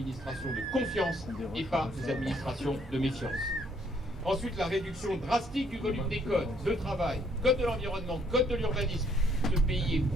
de confiance et pas des administrations de méfiance. Ensuite, la réduction drastique du volume des codes de travail, code de l'environnement, code de l'urbanisme. Ce pays est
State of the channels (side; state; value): both; normal; correlation 0.67